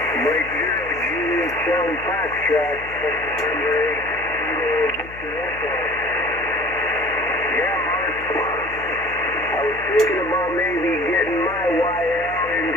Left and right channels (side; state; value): left; noise; hum, 17 dB below the sound